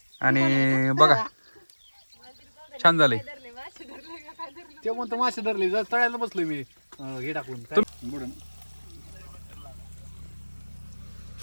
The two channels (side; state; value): both; inverted; correlation -1.00